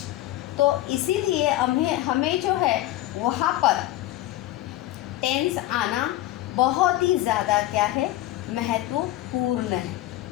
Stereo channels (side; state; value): right; quieter; 15.5 dB